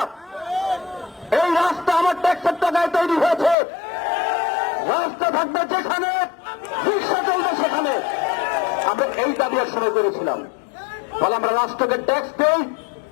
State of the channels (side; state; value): right; drops out; at 3.6 s